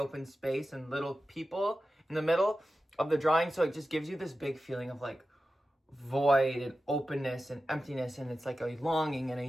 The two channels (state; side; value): normal; both; correlation 0.93